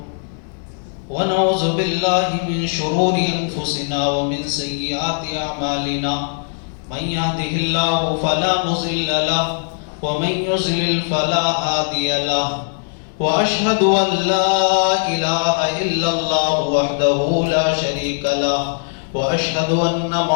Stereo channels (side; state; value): right; silent; digital silence